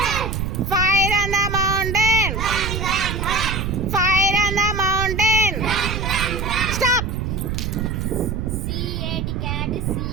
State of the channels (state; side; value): noise; right; rumble, 3 dB below the sound